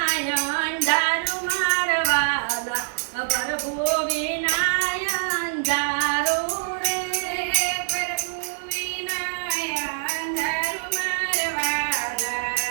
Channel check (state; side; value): silent; left; digital silence